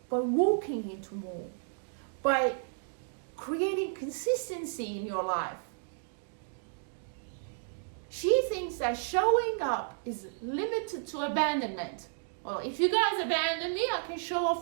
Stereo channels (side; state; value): left; silent; digital silence